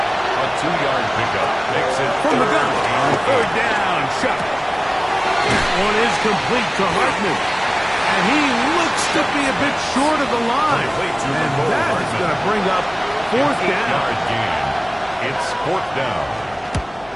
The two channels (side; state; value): left; noise; hum, 26 dB below the sound